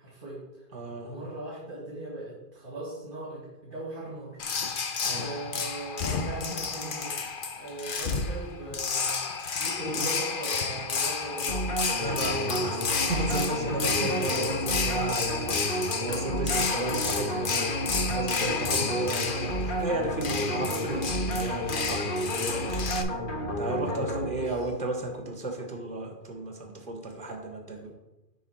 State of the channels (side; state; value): right; late; 2.4 ms